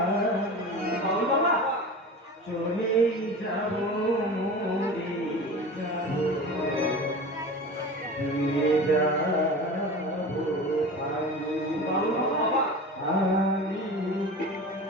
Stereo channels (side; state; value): both; normal; correlation 0.33